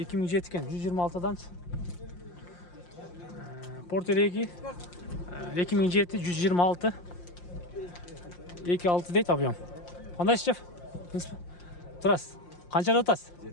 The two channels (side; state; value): right; late; 5.7 ms